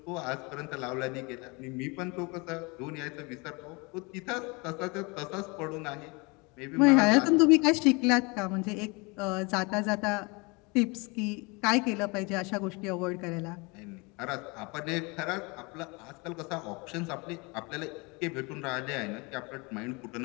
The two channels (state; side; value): quieter; right; 28.1 dB